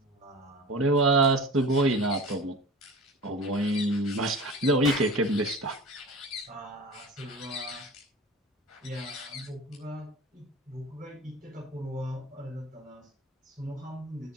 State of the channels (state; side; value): normal; both; correlation 0.35